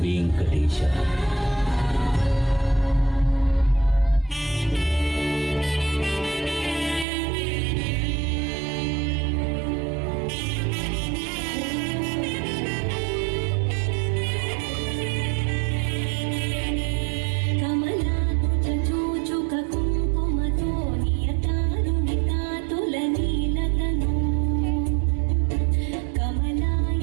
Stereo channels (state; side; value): drops out; left; at 7.1 s